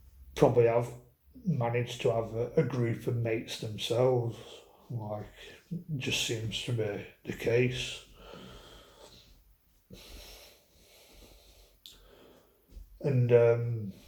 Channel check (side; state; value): both; identical; correlation 1.00